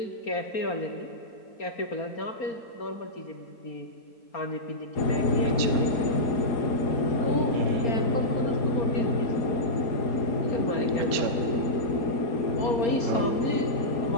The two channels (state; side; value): late; right; 4.3 ms